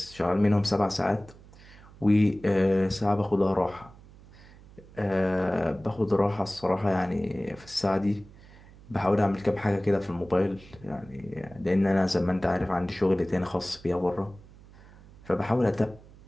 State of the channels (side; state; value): right; noise; hum, 22 dB below the sound